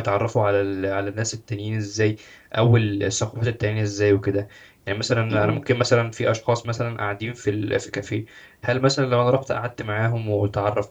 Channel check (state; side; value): identical; both; correlation 1.00